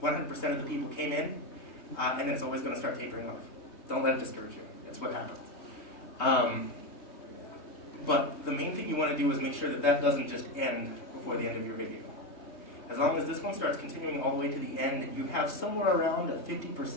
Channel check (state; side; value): late; right; 3.2 ms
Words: of the people came in. And then it's always going to start tapering off. Don't let it discourage you. That's what happens. But the main thing you want to do is make sure that that doesn't just end before the end of your video. As long as this one starts continuing all the way to the end and you have somewhere around at